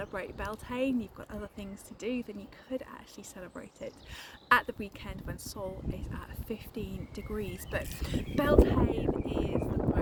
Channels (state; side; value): identical; both; correlation 1.00